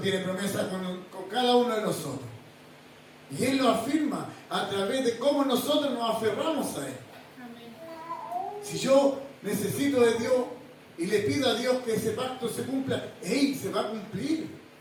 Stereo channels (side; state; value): both; identical; correlation 1.00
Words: tiene promesas con cada uno de nosotros. Y Él lo afirma a través de cómo nosotros nos aferramos a Él. Si yo necesito de Dios y le pido a Dios que ese pacto se cumpla, ¡ey! Se va a cumplir